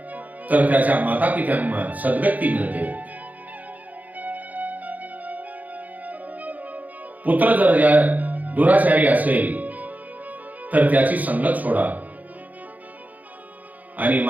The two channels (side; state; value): left; late; 0.079 ms